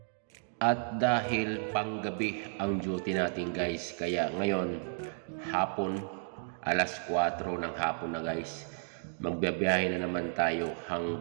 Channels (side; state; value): left; silent; digital silence